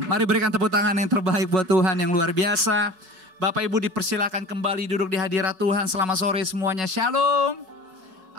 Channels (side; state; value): left; late; 5.4 ms